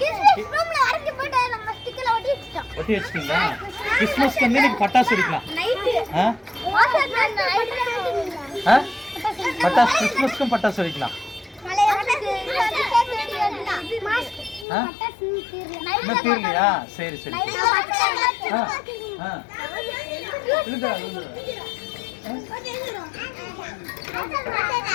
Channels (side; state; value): right; drops out; at 14.7 s